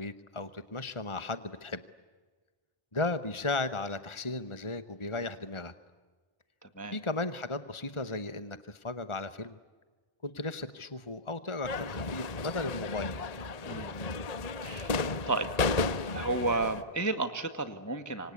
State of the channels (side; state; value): right; late; 1.8 ms